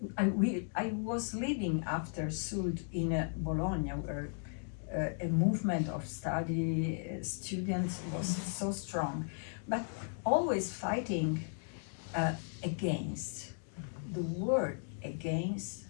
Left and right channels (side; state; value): right; silent; 54 dB below the other